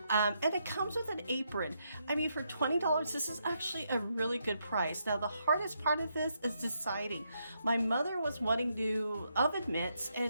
and it comes with an apron. I mean, for $20, this is actually a really good price. Now, the hardest part of this is deciding. My mother was wanting new oven mitts,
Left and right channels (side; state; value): both; inverted; correlation -0.79